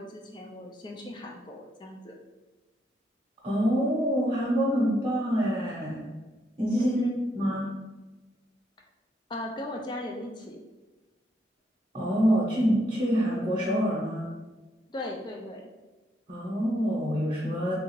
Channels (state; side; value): normal; both; correlation 0.76